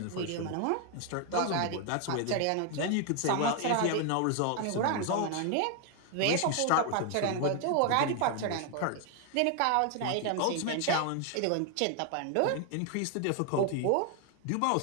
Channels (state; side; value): different; both; correlation 0.00